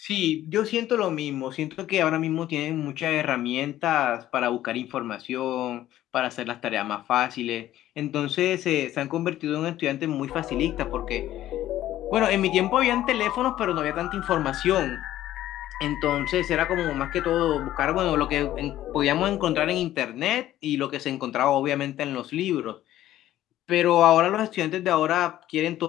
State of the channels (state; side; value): quieter; right; 13.5 dB